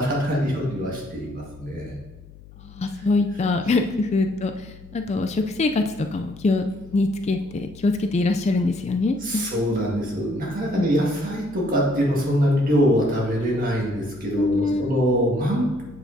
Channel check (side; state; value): left; noise; hum, 20 dB below the sound